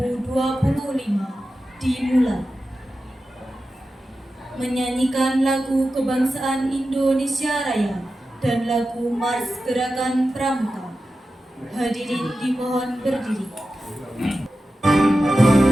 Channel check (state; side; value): normal; both; correlation 0.93